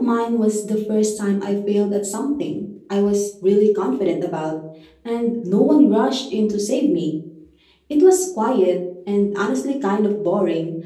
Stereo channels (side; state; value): both; identical; correlation 1.00